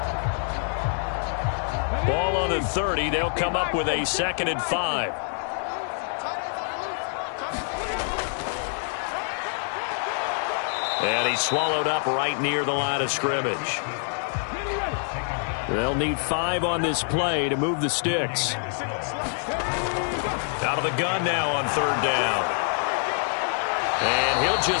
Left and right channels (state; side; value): silent; right; 61 dB below the other